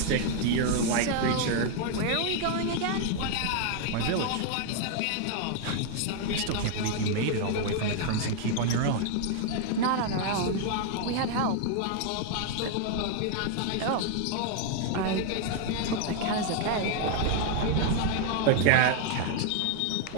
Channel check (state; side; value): different; both; correlation 0.00